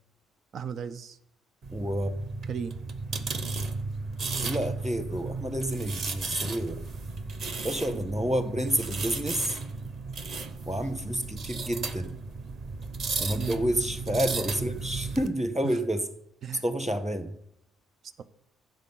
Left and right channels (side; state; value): both; normal; correlation 0.81